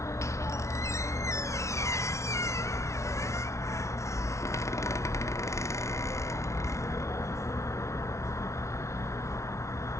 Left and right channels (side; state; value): right; late; 0.14 ms